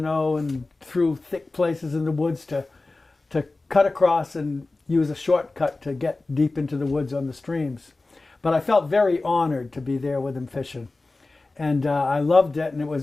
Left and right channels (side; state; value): right; quieter; 3.3 dB